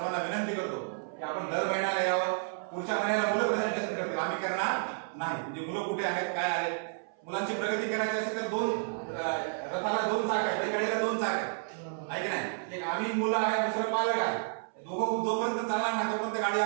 विनंती करतो की आपण दर महिन्याला यावं. पुढच्या महिन्याला मुलं प्रेझेंटेशन करतील आम्ही करणार नाही. म्हणजे मुलं कुठे आहेत काय आहेत. मुलांची प्रगती करायची असेल तर रथाला 2 चाक आहेत, बैलगाडीला 2 चाक आहेत आहे की नाही. एक आम्ही मुलं आहे दुसरं पालक आहे. दोघं जोपर्यंत चालणार नाही तोपर्यंत गाडी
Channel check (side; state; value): left; silent; 57 dB below the other